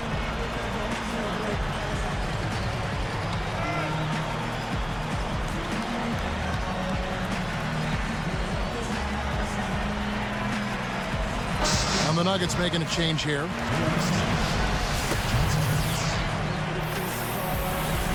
And the Nuggets making a change here.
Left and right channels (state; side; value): identical; both; correlation 1.00